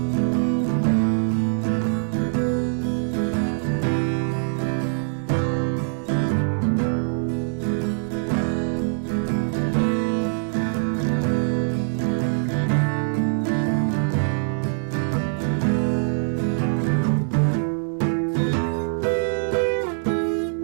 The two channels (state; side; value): silent; left; digital silence